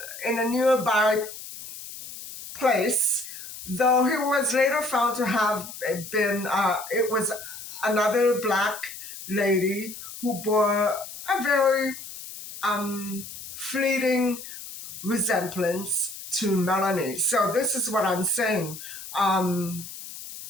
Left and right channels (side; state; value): left; noise; hiss, 12 dB below the sound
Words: in a nearby place, though he was later found to have been, it was another black lady who bore a very fleeting resemblance to Melanie. So this is what I'm saying.